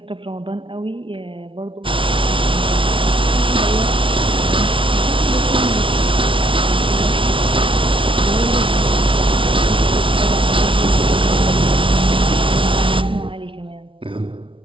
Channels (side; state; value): left; late; 0.25 ms